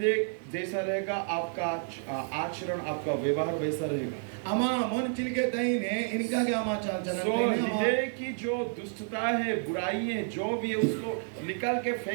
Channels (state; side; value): silent; left; digital silence